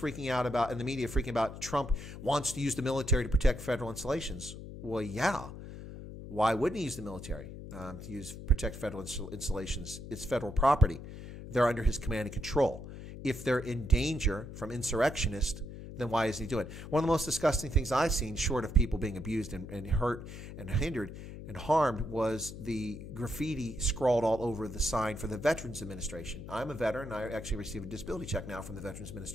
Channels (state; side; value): noise; left; hum, 11 dB below the sound